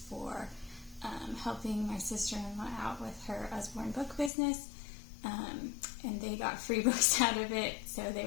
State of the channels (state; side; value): drops out; right; at 4.3 s